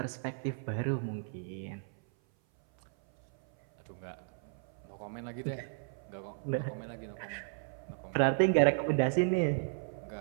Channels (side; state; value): left; silent; 55 dB below the other